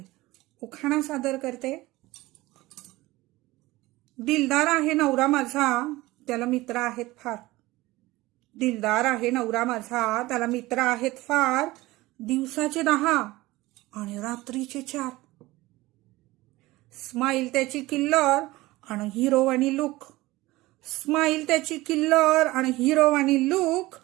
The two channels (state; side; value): quieter; left; 19.2 dB